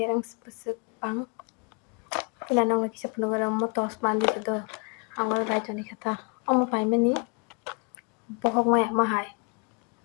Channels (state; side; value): quieter; right; 34.5 dB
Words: earrings pusuk pang ila nong la kisa puno gara mo tos mandi do angol bai jani kata omo pai mani bohok maya mahai